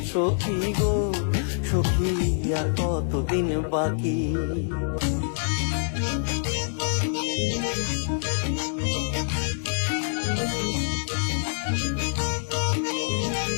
সখী গো সখী, আর কতদিন বাকি।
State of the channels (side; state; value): right; silent; 61 dB below the other